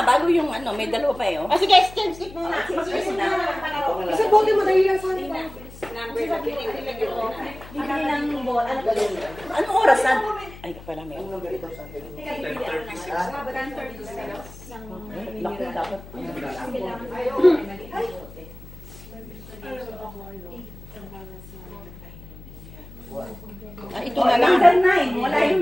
Bago yung ano, may dalawa pa eh. Oh. Sige, skip na. Kasi bote mo dahil lang sa number na pinipilagyan ko. Bibili ng ball. Ano ba yun? Anong oras na? Ay, pala may. Laki dapat. Ah, ito na lang. Number 9. Wala yung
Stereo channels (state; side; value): noise; left; hum, 17 dB below the sound